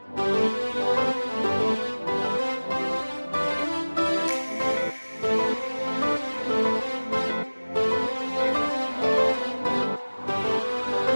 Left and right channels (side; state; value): both; inverted; correlation -1.00